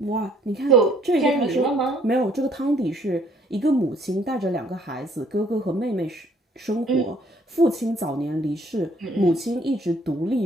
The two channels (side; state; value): both; normal; correlation 0.62